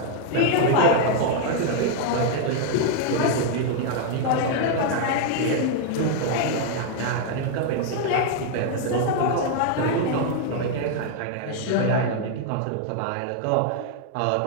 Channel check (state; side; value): different; both; correlation 0.00